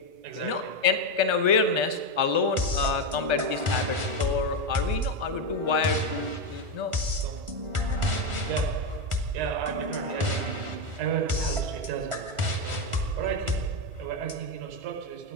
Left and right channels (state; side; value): late; left; 1.4 ms